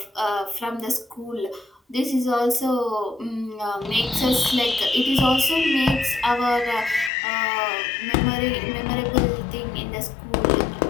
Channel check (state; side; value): drops out; right; at 7.1 s